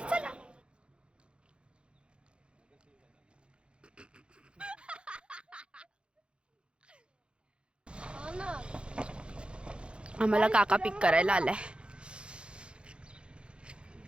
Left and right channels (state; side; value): late; left; 0.055 ms